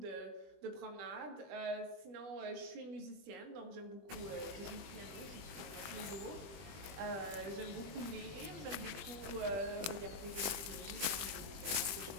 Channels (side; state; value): left; late; 20 ms